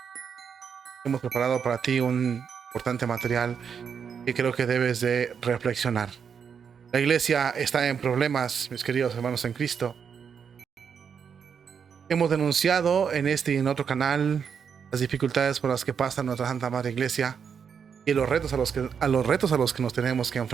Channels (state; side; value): quieter; left; 7.0 dB